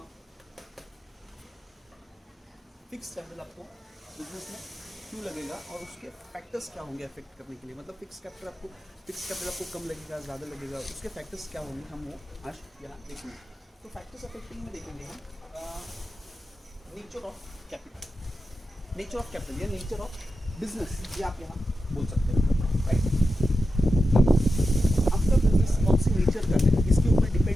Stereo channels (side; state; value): both; normal; correlation 0.90